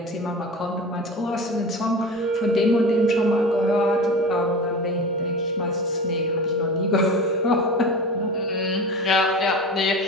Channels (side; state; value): both; normal; correlation 0.32